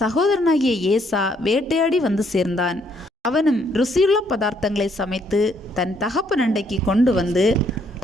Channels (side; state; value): both; normal; correlation 0.69